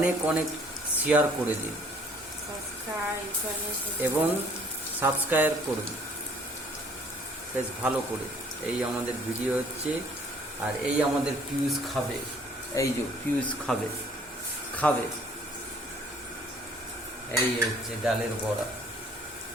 অনেক শেয়ার করে দিন এবং সাবস্ক্রাইব করুন বেশ ভালো করে। এই আমাদের ভিডিও হচ্ছে, আর এই আমাদের পিউষ খাবে, এই যে পিউষ খাবে খাবে এই হচ্ছে ডালের বড়া।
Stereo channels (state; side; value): normal; both; correlation 0.58